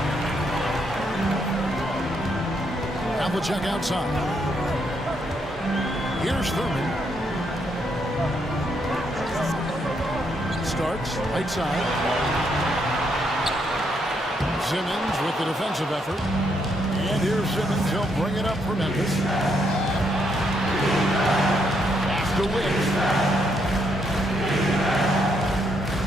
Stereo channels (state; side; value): normal; both; correlation 0.76